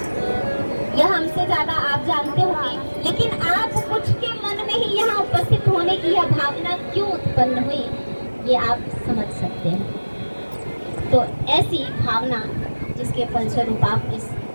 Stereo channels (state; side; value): inverted; both; correlation -1.00